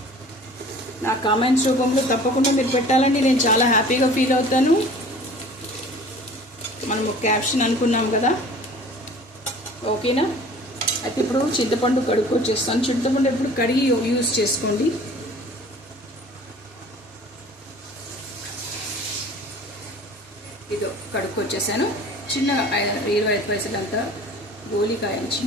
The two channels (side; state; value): both; normal; correlation 0.46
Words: నా కామెంట్స్ రూపంలో తప్పకుండా మీరు పెట్టాలండి, నేను చాలా హ్యాపీగా ఫీల్ అవుతాను. మనము క్యాప్షన్ అనుకున్నాం కదా, ఓకేనా? అయితే ఇప్పుడు చింతపండు కడుక్కొచ్చేస్తాను. చింతపండు ఎప్పుడు కడిగి యూజ్ చేసుకోండి. ఇదో కడుక్కొచ్చేసాను. చిన్నగా 25 పైసలంతా గోలికాయని